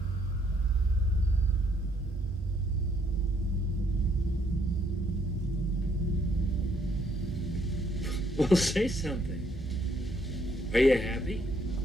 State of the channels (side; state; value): both; normal; correlation 0.69